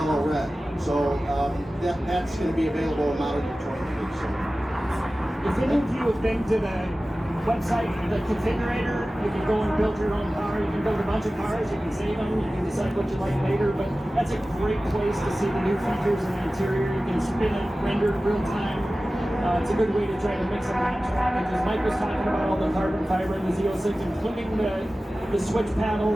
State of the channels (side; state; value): both; normal; correlation 0.96